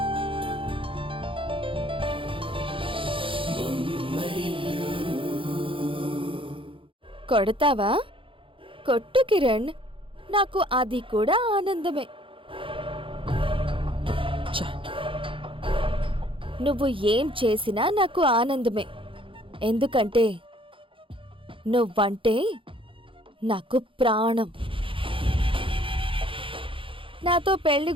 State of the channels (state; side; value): late; left; 0.25 ms